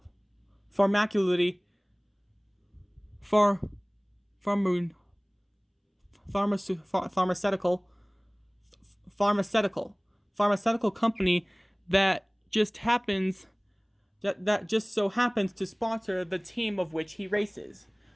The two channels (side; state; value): both; identical; correlation 1.00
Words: pharmaceutical company that just so happens to sponsor the team of which he races.